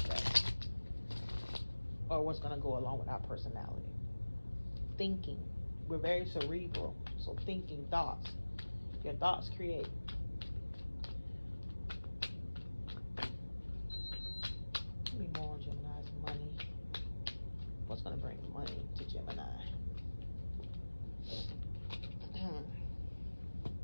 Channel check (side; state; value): both; inverted; correlation -1.00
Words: or what's going to go along with our personality. Thinking, we're very cerebral, so thinking, thoughts, your thoughts create. Give me more on Gemini's money. What's going to bring money to Gemini?